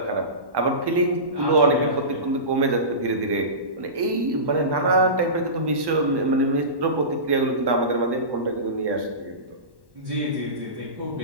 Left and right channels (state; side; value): late; left; 1.1 ms